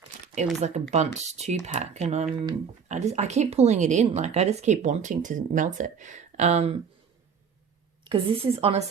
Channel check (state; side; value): quieter; left; 6.6 dB